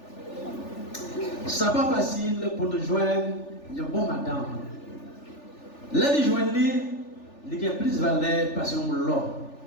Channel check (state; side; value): late; right; 3.4 ms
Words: Ce n'est pas facile pour nous joindre une bonne madame. Là, nous joignons, il y a plus de valeur parce qu'on l'a.